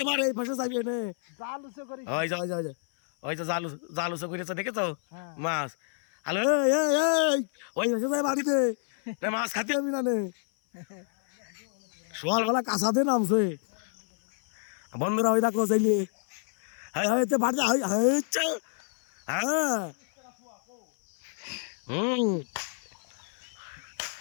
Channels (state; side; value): silent; right; 57 dB below the other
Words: মারে এই ফাঁসে যাবি এনে। জাল উসে করি। ওই যা ওই যা ওই তো জালু জালুসো করেছে দেখেছো হ্যাঁ। মাছ। হ্যালো ওই ফাঁসে যায় বাড়িতে না, মাছ খাতে আমি না নে। সকালবেলা কাঁচাতে নামছে বন্ধুরা, ওই দেখো চাইলে হ্যাঁ হ্যাঁ বাড়িতে হ্যাঁ হুম